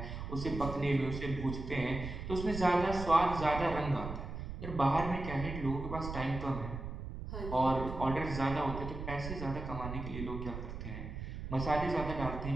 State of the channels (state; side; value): noise; right; rumble, 7 dB below the sound